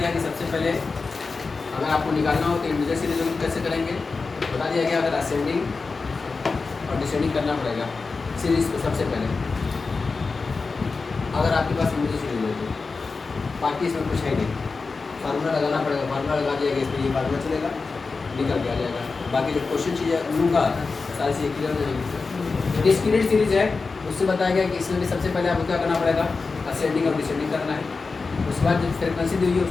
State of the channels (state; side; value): quieter; right; 4.3 dB